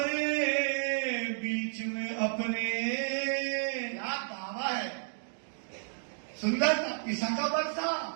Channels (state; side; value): silent; left; digital silence